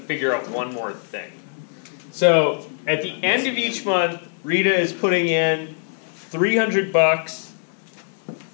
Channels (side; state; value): right; silent; 59 dB below the other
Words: out one more thing. So at the end of each month, Rita is putting in $300